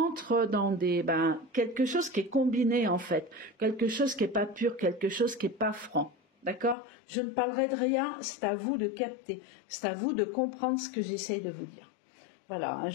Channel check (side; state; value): right; drops out; at 6.8 s